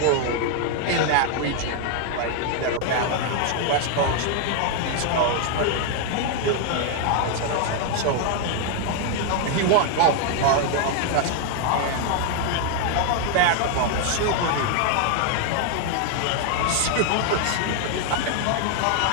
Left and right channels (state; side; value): different; both; correlation 0.00